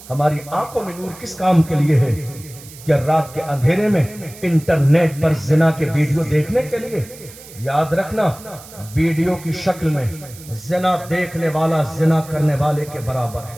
ہماری آنکھوں میں نور کس کام کے لیے ہے؟ کیا رات کے اندھیرے میں انٹرنیٹ پر زنا کے ویڈیو دیکھنے کے لیے؟ یاد رکھنا ویڈیو کی شکل میں زنا دیکھنے والا زنا کرنے والے کے برابر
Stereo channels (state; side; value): noise; right; hiss, 18 dB below the sound